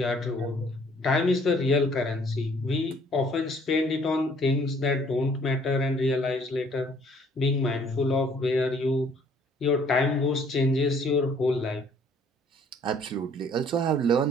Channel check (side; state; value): both; normal; correlation 0.60